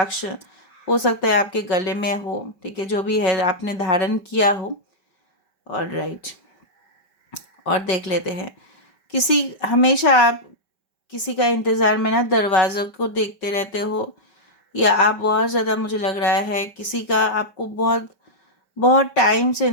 हो सकता है आपके गले में हो, ठीक है, जो भी है आपने धारण किया हो, और राइट। और देख लेते हैं, किसी, हमेशा आप किसी का इंतज़ार में ना दरवाज़ों को देखते रहते हो, या आप बहुत ज़्यादा, मुझे लग रहा है किसी का आपको बहुत बहुत टाइम से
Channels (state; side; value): late; right; 5.2 ms